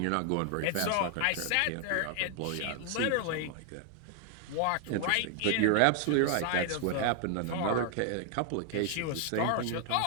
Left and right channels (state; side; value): different; both; correlation 0.00